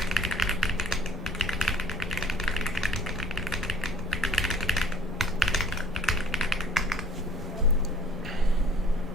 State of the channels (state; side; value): normal; both; correlation 0.53